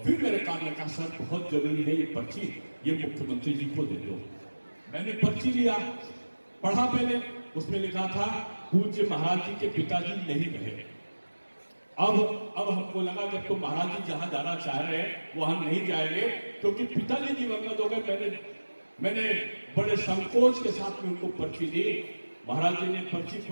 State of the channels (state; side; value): inverted; both; correlation -1.00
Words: फिर मेरे कान में कहा, सर बहुत जरूरी है ये पर्ची, ये मुख्यमंत्री जी को दे दो। मैंने पर्ची लिया, पढ़ा पहले, उसमें लिखा था पूज्य महाराज जी के पिताजी नहीं रहे। अब हमको लगा जब तो महाराज जी जहां जाना चाह रहे हैं वहां नहीं जाएंगे, क्योंकि पिताजी दिवंगत हो गए। मैंने बड़े संकोच के साथ में उनको पर्ची दी। महाराज जी ने पर्ची